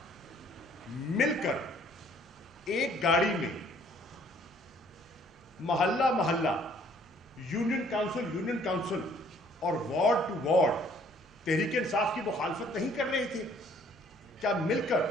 मिलकर एक गाड़ी में मोहल्ला मोहल्ला, यूनियन काउंसिल और ward to ward Tehreek Insaf की मुखालफत नहीं कर रहे थे? क्या मिलकर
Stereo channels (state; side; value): normal; both; correlation 0.60